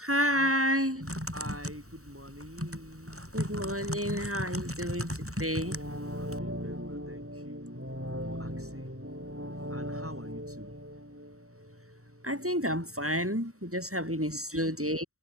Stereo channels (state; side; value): late; left; 0.64 ms